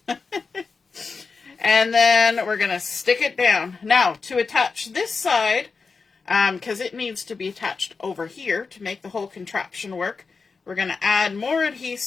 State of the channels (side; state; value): right; quieter; 4.7 dB